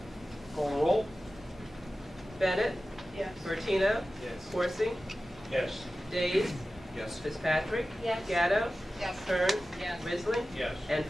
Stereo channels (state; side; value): normal; both; correlation 0.95